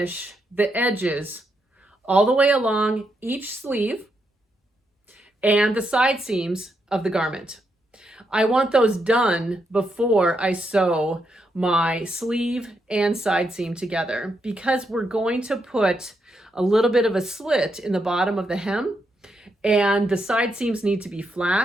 the edges all the way along each sleeve and the side seams of the garment. I want those done before I sew my sleeve and side seam together, because we're going to put a little bit of a slit in the bottom of the hem and the side seams need to be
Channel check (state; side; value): normal; both; correlation 0.81